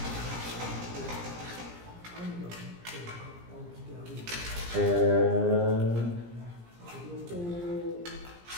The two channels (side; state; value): left; late; 17 ms